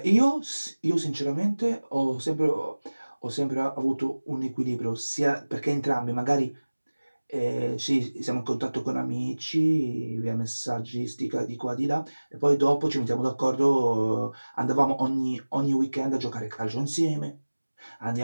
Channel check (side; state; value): both; inverted; correlation -1.00